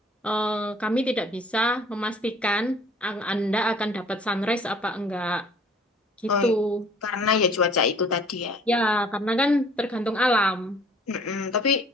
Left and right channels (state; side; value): normal; both; correlation 0.54